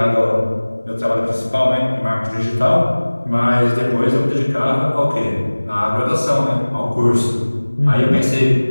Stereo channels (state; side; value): inverted; both; correlation -1.00